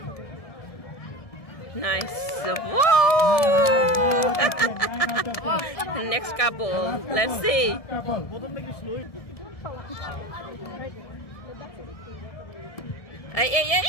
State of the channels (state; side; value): late; right; 1.7 ms